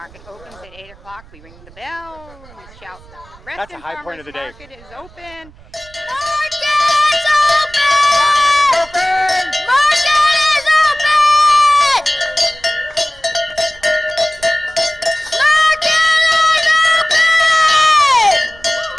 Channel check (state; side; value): noise; right; rumble, 24 dB below the sound